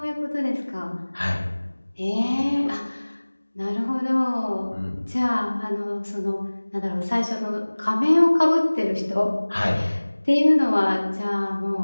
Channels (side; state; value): both; inverted; correlation -1.00